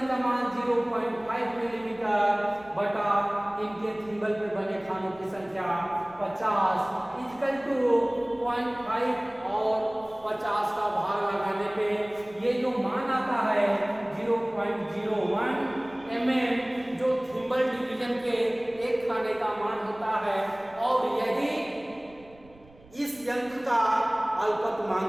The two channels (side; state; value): right; noise; rumble, 25 dB below the sound